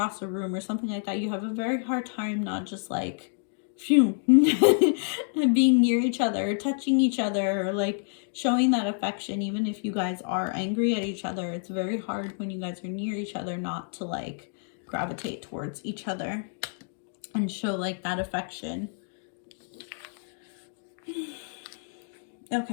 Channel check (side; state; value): right; silent; digital silence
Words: a room or something like that, you have a very hard time not just like phew being near each other or touching each other or like showing that affection. Even if you guys are angry at each other, it's very hard when you guys are near each other not to like gravitate towards each other and show like that affection.